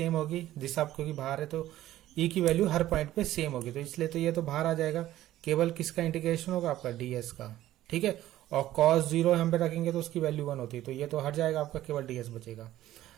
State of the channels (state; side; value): quieter; left; 14.2 dB